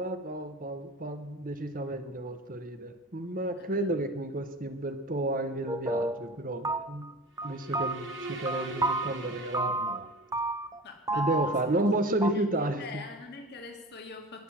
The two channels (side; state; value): both; normal; correlation 0.36